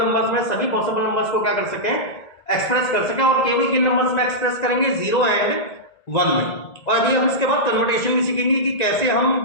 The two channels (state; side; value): late; right; 1.8 ms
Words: में सभी पॉसिबल नंबर्स को क्या कर सकें, एक्सप्रेस कर सकें। और केवल किन नंबर्स में एक्सप्रेस करेंगे? 0 एंड 1 में। और अभी हम इसके बाद कन्वर्टेशन भी सीखेंगे कि कैसे